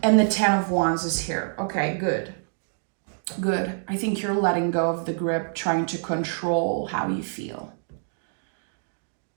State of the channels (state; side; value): silent; left; digital silence